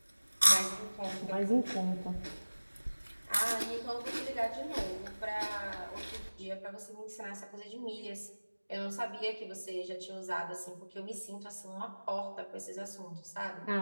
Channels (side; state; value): both; inverted; correlation -1.00